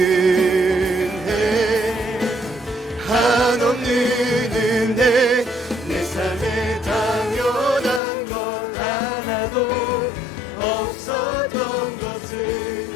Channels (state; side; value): drops out; right; at 8.0 s